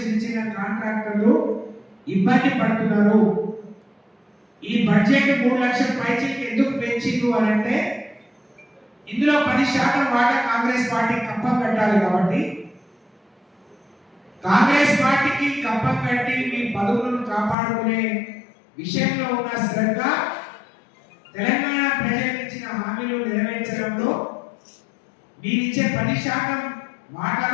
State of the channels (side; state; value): right; drops out; at 17.6 s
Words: చిన్న చిన్న కాంట్రాక్టర్లు ఇబ్బంది పడుతున్నారు. ఈ బడ్జెట్ 3 లక్షల పైచీకి ఎందుకు పెంచిండు అని అంటే ఇందులో 10% వాటా కాంగ్రెస్ పార్టీ కప్పం కట్టాలి. కాబట్టి కాంగ్రెస్ పార్టీకి కప్పం కట్టి మీ పదవులను కాపాడుకునే విషయంలో ఉన్న శ్రద్ధ, తెలంగాణ ప్రజలకు ఇచ్చిన హామీలు నెరవేర్చడంలో మీరిచ్చే 10%